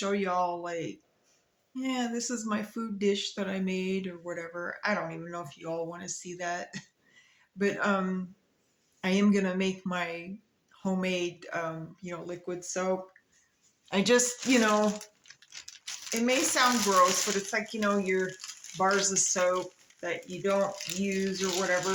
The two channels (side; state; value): both; identical; correlation 1.00